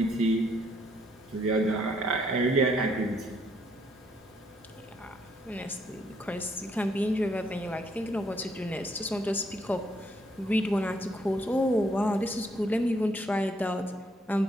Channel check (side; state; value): both; normal; correlation 0.71